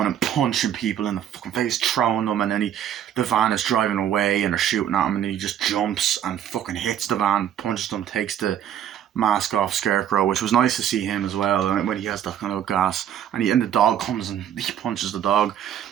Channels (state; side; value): quieter; left; 10.0 dB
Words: and punching people in the fucking face, throwing them, and then the van is driving away and they're shooting at him, and then he just jumps and fucking hits the van, punches them, takes the mask off Scarecrow, which was nice to see him as well, and when he has that kind of gas, and the dog comes and he punches the dog,